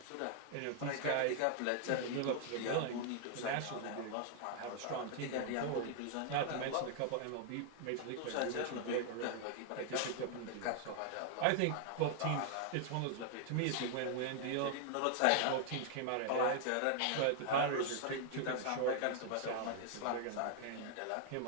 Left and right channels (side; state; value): both; different; correlation 0.00